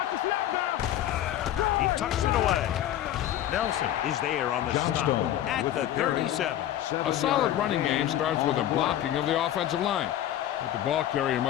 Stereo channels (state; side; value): quieter; right; 12.1 dB